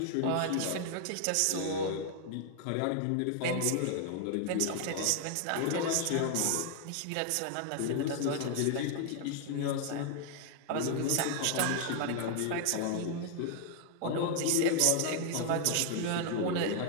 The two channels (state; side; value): different; both; correlation 0.00